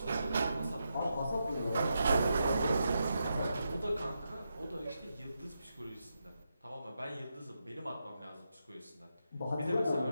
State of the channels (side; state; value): both; inverted; correlation -0.85